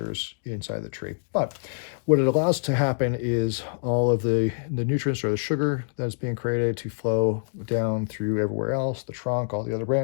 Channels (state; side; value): silent; right; digital silence